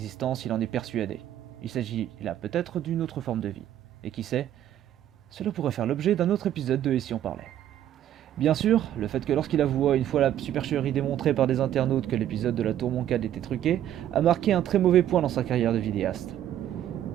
il en est persuadé. Il s'agit là peut-être d'une autre forme de vie. Et qui sait, Cela pourrait faire l'objet d'un autre épisode de Et si on parlait. Bien sûr, le fait que lorsqu'il avoua une fois la supercherie démontrée par des internautes que l'épisode de la Tour Moncade était truqué, a marqué un très mauvais point dans sa carrière de vidéaste.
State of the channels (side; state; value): left; quieter; 11.4 dB